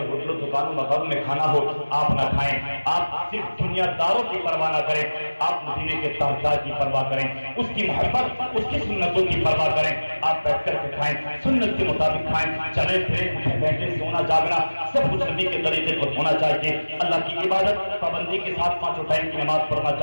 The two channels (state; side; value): inverted; both; correlation -1.00